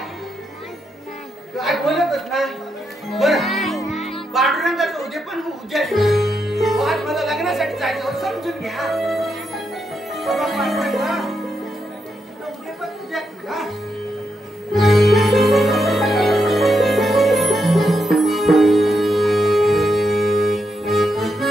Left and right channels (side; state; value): both; normal; correlation 0.82